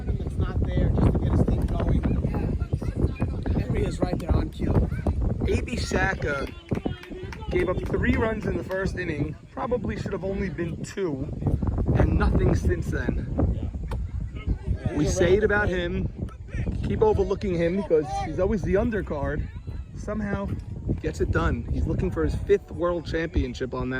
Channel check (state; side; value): identical; both; correlation 1.00